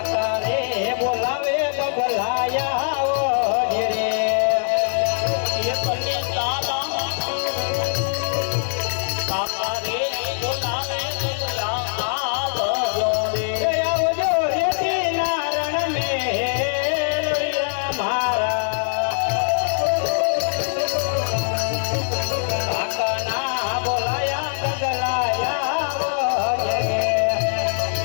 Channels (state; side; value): silent; right; 60 dB below the other